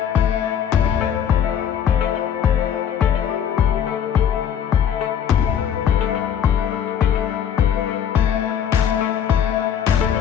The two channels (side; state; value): right; quieter; 8.9 dB